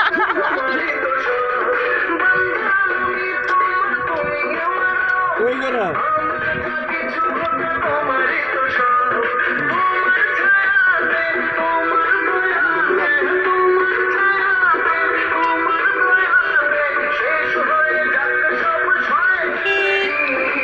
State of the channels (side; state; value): left; noise; rumble, 27 dB below the sound